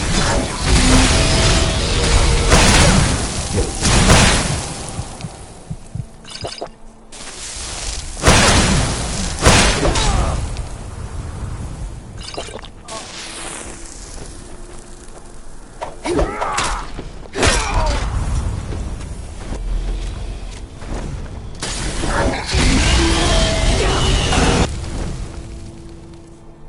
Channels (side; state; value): both; identical; correlation 1.00